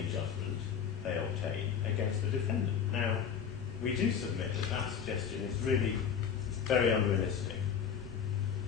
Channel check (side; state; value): right; quieter; 7.5 dB